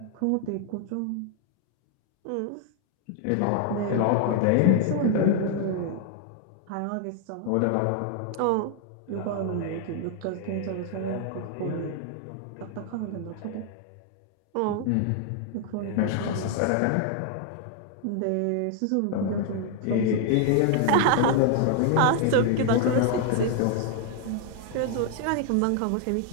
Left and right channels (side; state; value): both; different; correlation 0.00